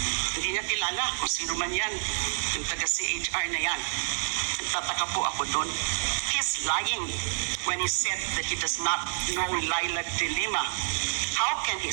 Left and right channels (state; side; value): silent; left; digital silence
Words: hindi niya kilala kung sino man yan, yung taga-CHR na yan. Nagtataka po ako doon. He's lying when he said that he does not know Laila de Lima. How can he